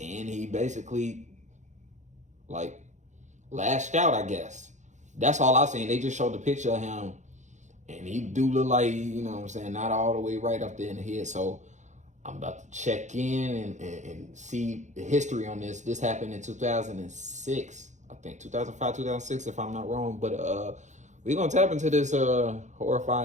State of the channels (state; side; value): late; left; 0.35 ms